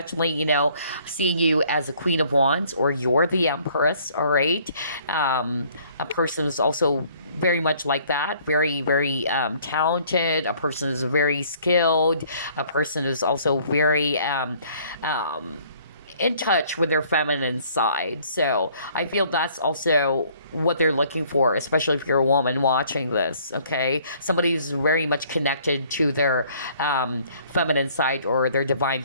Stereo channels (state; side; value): inverted; both; correlation -0.59